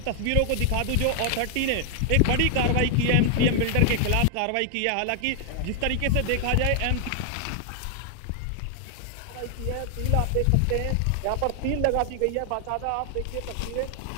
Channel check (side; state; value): both; different; correlation 0.00